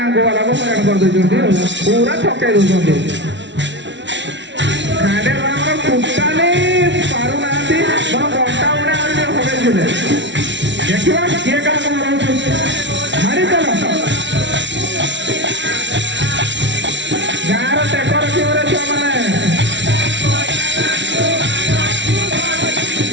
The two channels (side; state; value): left; late; 0.52 ms